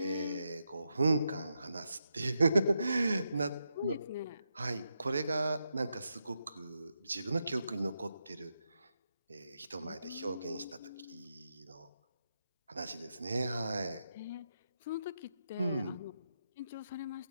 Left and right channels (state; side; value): inverted; both; correlation -0.85